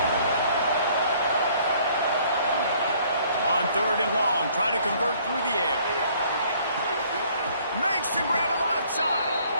On 3rd and long, trying to convert through the air. Makes the grab on the left side.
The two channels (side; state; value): both; inverted; correlation -0.60